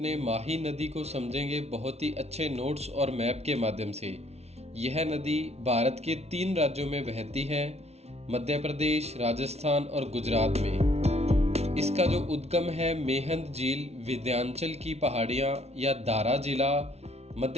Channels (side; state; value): left; late; 0.31 ms